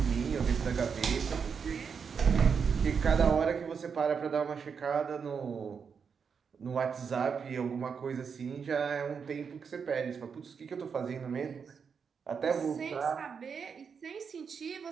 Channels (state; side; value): quieter; left; 6.2 dB